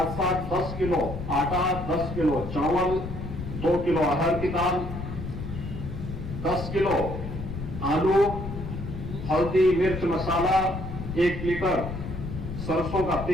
साथ 10 किलो आटा, 10 किलो चावल, 2 किलो अरहर की दाल, 10 किलो आलू, हल्दी, मिर्च मसाला, 1 लीटर सरसों का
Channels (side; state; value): left; noise; rumble, 7 dB below the sound